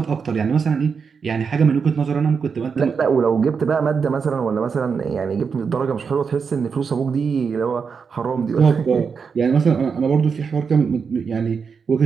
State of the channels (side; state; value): left; quieter; 5.8 dB